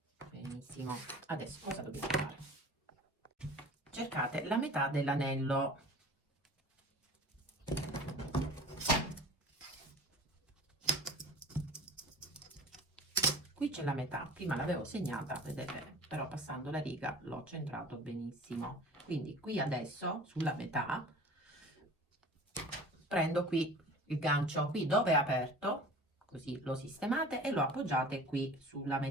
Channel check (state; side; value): normal; both; correlation 0.42